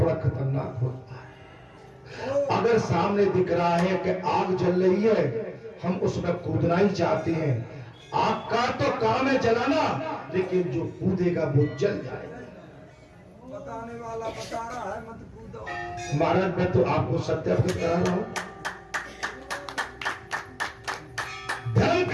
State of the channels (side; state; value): both; identical; correlation 1.00